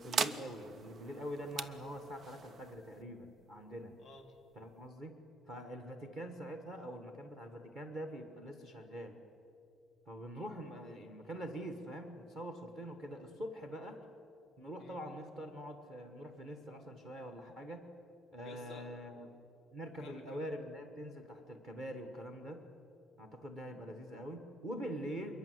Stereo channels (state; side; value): normal; both; correlation 0.68